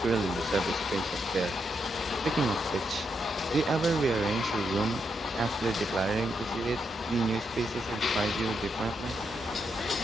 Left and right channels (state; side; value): normal; both; correlation 0.81